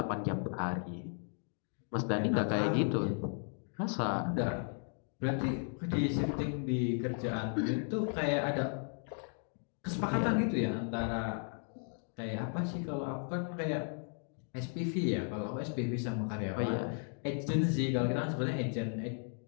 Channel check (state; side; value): silent; right; 54 dB below the other